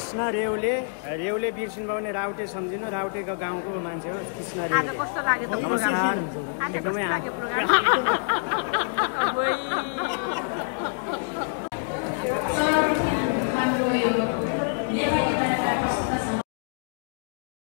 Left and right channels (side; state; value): right; silent; digital silence